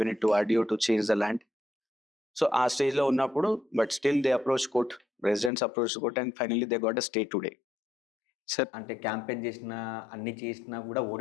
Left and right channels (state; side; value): drops out; right; at 5.5 s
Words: it to RDO to change the land. So ఆ స్టేజ్లో ఉన్నప్పుడు but still they approach court, residents approach court and finally they got a stay today. Sir అంటే campaign చేసినా అన్ని చేసినా కూడా